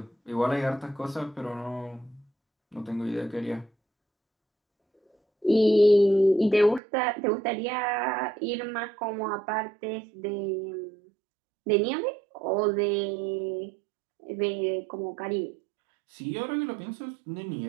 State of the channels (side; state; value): left; drops out; at 6.8 s